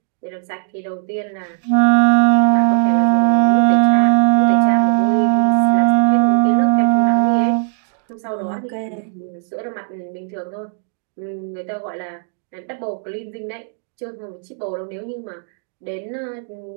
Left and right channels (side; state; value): left; silent; digital silence